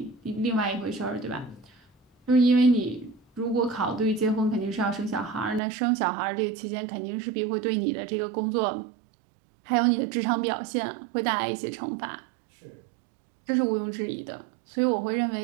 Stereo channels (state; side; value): drops out; left; at 5.6 s